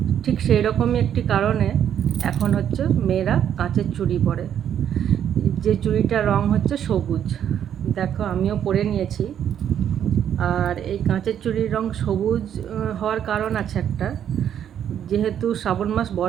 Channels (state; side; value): quieter; left; 9.5 dB